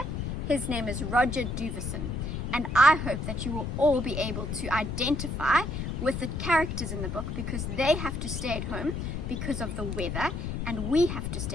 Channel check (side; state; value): left; noise; rumble, 3 dB below the sound